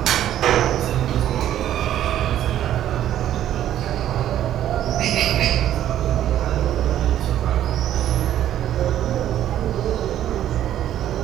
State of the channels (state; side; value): quieter; left; 11.7 dB